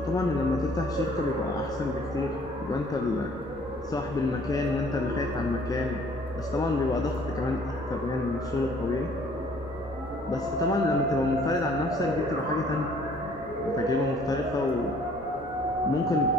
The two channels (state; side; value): normal; both; correlation 0.57